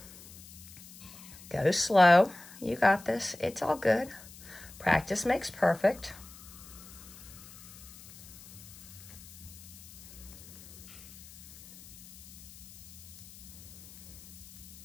Go slow. You got this. It's all good. Practice makes perfect.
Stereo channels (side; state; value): left; noise; hiss, 18 dB below the sound